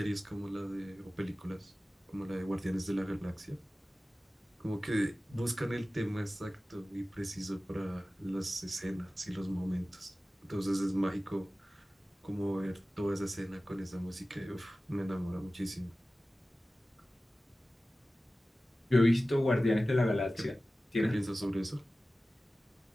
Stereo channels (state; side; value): normal; both; correlation 0.96